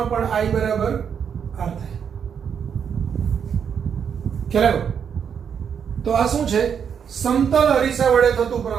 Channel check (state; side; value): quieter; left; 7.4 dB